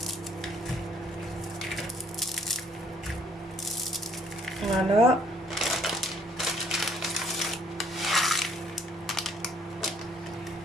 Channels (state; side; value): normal; both; correlation 0.63